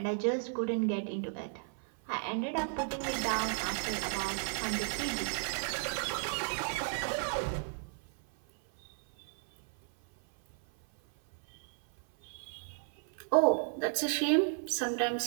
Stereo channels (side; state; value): left; silent; 55 dB below the other